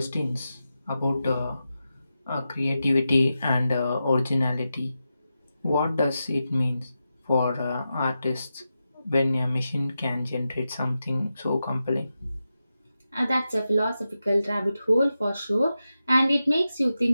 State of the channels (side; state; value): both; inverted; correlation -0.90